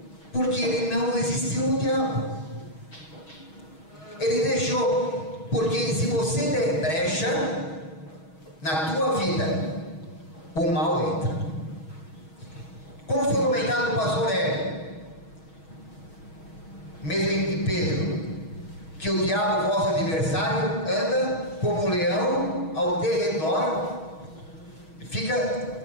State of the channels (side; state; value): right; late; 6.3 ms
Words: Porque ele não resistiu ao diabo. Ele deixou. Porque se você der brecha na tua vida, o mal entra. Como foi comentado no pastor Hélio, mesmo em Pedro, que o diabo, vosso adversário, anda como um leão ao derredor,